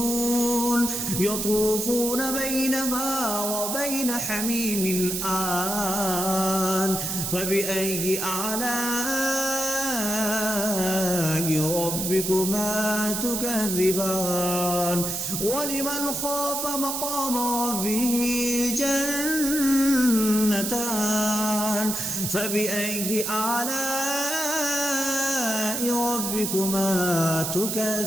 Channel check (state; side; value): noise; right; hiss, 2 dB below the sound